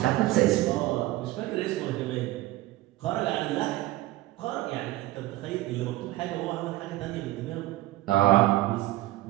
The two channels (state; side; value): quieter; left; 17.0 dB